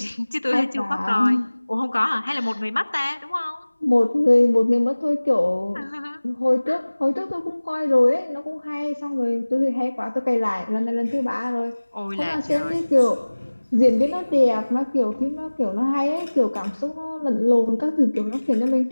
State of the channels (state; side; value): inverted; both; correlation -1.00